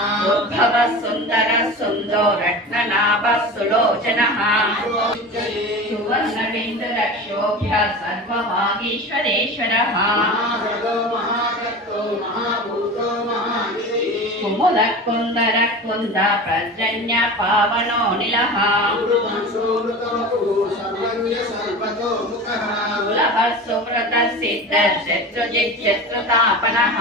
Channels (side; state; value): both; normal; correlation 0.32